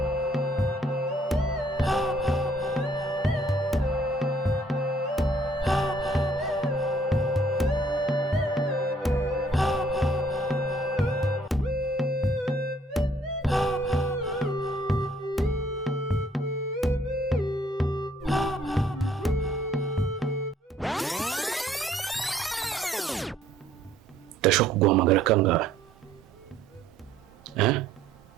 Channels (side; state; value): both; normal; correlation 0.62